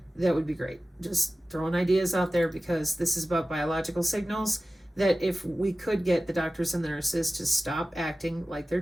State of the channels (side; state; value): both; normal; correlation 0.96